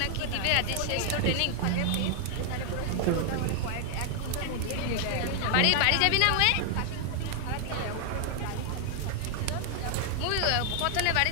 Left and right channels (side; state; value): both; different; correlation 0.00